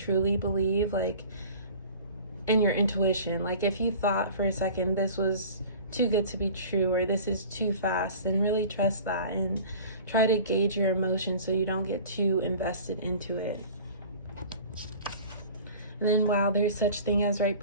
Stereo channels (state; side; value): inverted; both; correlation -0.43